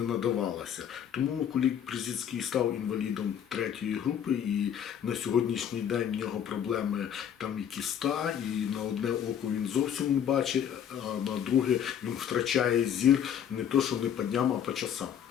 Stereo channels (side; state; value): right; quieter; 9.1 dB